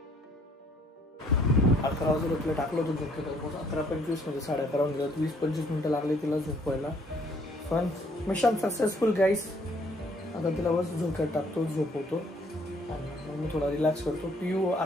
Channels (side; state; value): both; normal; correlation 0.63